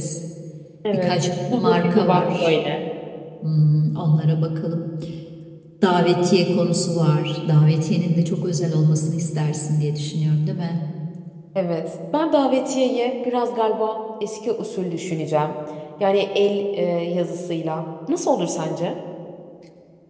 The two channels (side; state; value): both; identical; correlation 1.00